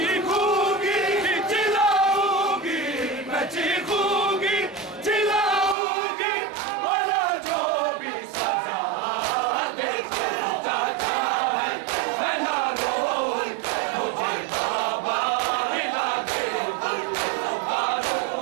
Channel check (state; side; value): drops out; left; at 5.8 s